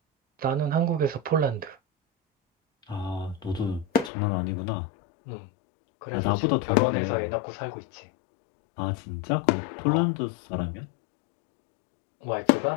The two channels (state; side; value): drops out; right; at 4.1 s